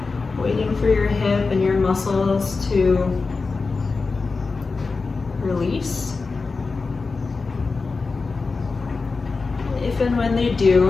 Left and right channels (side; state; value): right; quieter; 4.2 dB